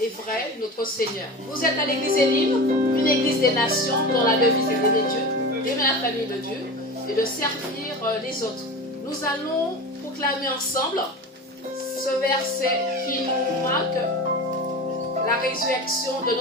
vrai, notre Seigneur. Vous êtes à l'église Elim, une église des nations dont la devise est d'aimer Dieu, d'aimer la famille de Dieu et de servir les autres. Nous allons proclamer ensemble ce verset qui nous marque la résurrection de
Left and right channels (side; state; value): both; normal; correlation 0.30